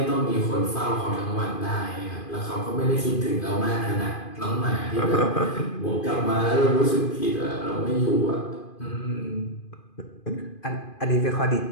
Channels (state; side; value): late; right; 2.5 ms